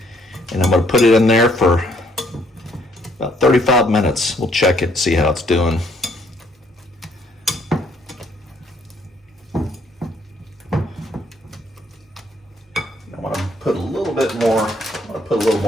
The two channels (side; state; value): both; normal; correlation 0.67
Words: and I'm going to put it in there for about 35 minutes. We'll check it, see how it's doing. Put a little bit more. I'm gonna put a little